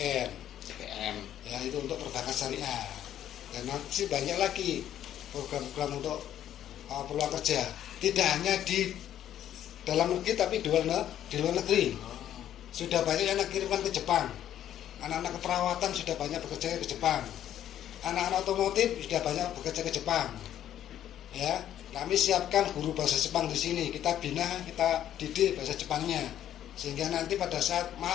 Ya, itu untuk perbankan syariah. Dan nanti banyak lagi program-program untuk peluang kerja. Tidak hanya di dalam negeri tapi di luar negeri. Sudah banyak yang kirimkan ke Jepang. Anak-anak keperawatan sudah banyak bekerja ke Jepang. Anak-anak otomotif sudah banyak bekerja ke Jepang. Ya, kami siapkan guru bahasa Jepang di sini. Kita bina, kita didik bahasa Jepangnya, sehingga nanti pada saat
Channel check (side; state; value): right; quieter; 11.1 dB